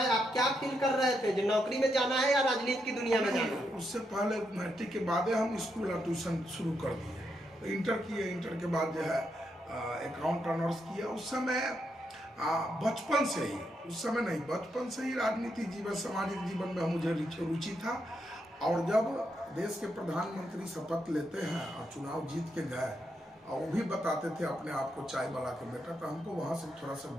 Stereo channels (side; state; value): both; normal; correlation 0.81